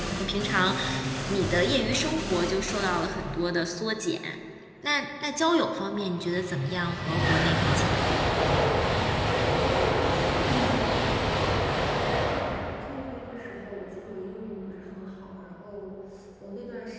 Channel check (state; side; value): identical; both; correlation 1.00